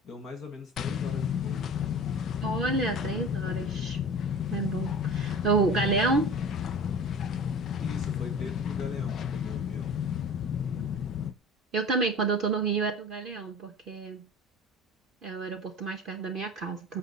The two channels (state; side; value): normal; both; correlation 0.37